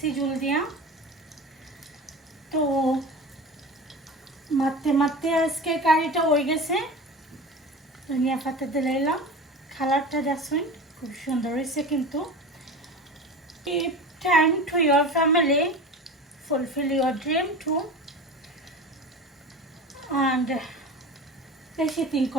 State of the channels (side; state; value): both; normal; correlation 0.32